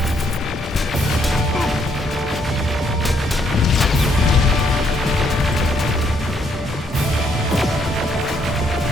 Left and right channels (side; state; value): both; normal; correlation 0.71